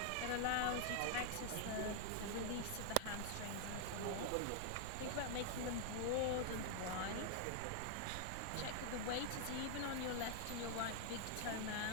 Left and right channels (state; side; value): different; both; correlation 0.00